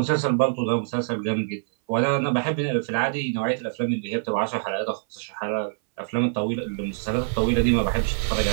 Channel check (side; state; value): left; silent; 59 dB below the other